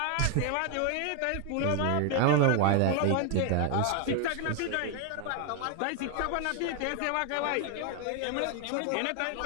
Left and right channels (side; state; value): both; different; correlation 0.00